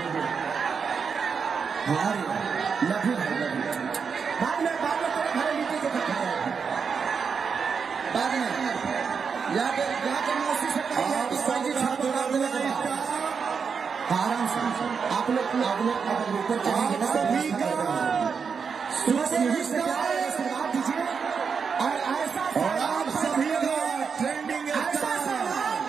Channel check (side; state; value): left; quieter; 5.9 dB